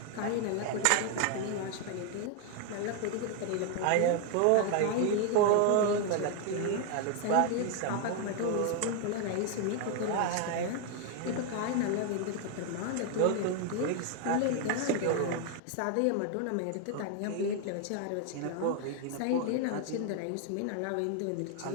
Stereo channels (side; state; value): both; different; correlation 0.01